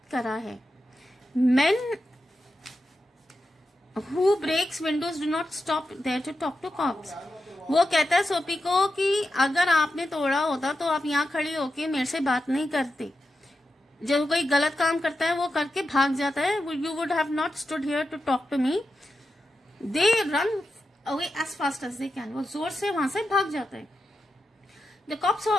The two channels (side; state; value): both; normal; correlation 0.89